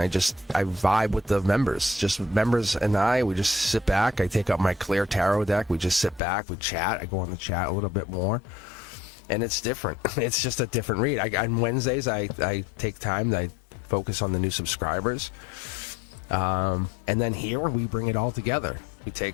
vibe with the members. Just members and we just sit back. I take up my clear tarot deck. We just sit back, we chat. I go on the chat a little bit more, and it's different. It's just a different read. On Wednesdays, I take time. I focus on the new subscribers. And then here we bring it all together.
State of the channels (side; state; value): right; drops out; at 6.2 s